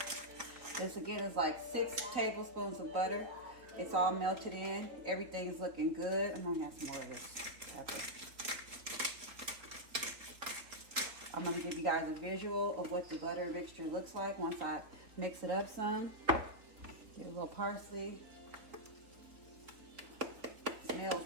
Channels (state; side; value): late; left; 3.8 ms